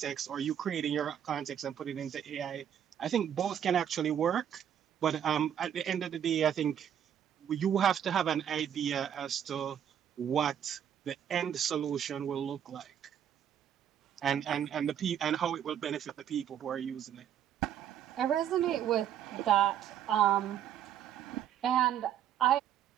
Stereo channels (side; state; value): left; quieter; 9.6 dB